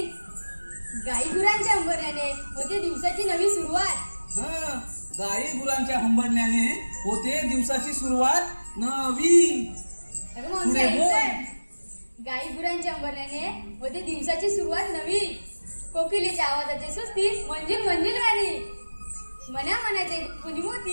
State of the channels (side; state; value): both; inverted; correlation -1.00